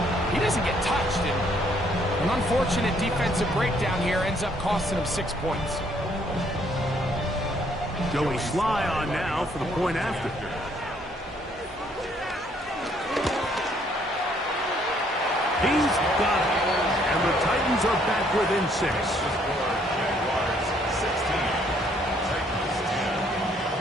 he doesn't get touched. And an unfortunate defensive breakdown here ends up costing him 6 points. Joey Sly on now for the point after. He's got it. And the Titans are back within 6.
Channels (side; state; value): both; normal; correlation 0.66